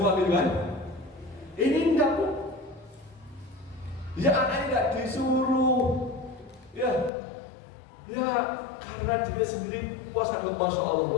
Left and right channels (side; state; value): right; drops out; at 7.1 s